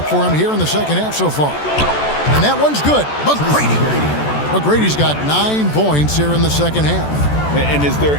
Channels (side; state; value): right; late; 14 ms